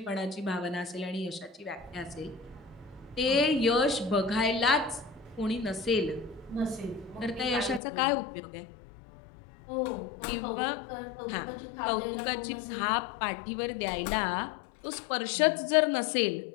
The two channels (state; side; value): drops out; right; at 7.8 s